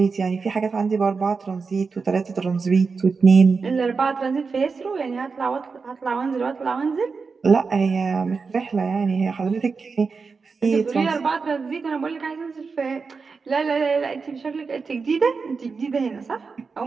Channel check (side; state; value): left; quieter; 4.8 dB